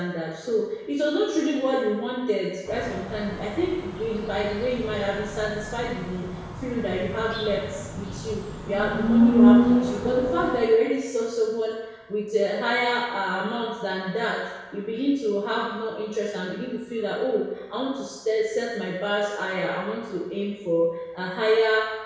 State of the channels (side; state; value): both; identical; correlation 1.00